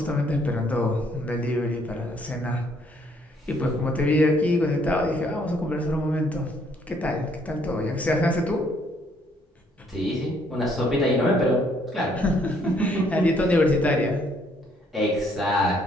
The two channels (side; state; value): both; normal; correlation 0.67